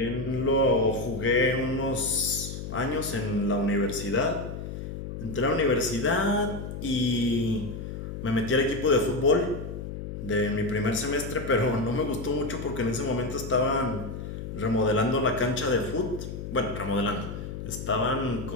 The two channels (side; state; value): left; noise; hum, 7 dB below the sound